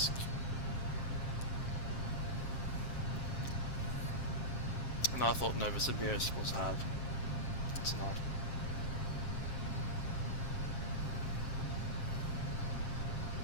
And I thought Novosibirsk was hard. It's not.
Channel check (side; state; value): right; late; 7.5 ms